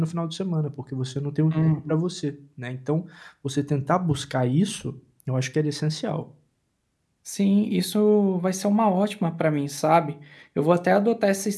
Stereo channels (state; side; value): identical; both; correlation 1.00